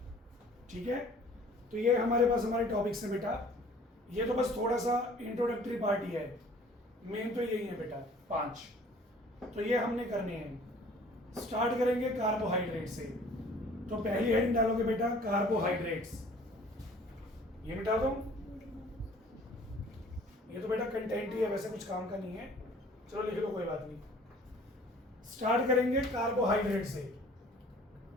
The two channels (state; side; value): normal; both; correlation 0.52